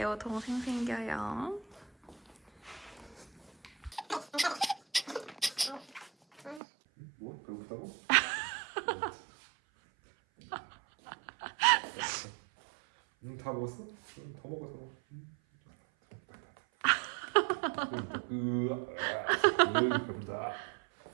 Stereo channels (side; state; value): left; drops out; at 6.6 s